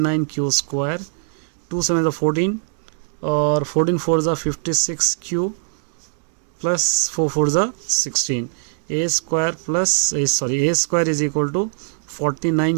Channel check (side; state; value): left; silent; digital silence